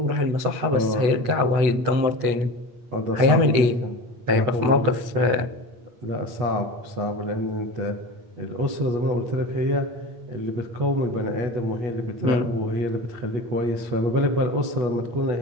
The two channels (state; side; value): late; left; 8.0 ms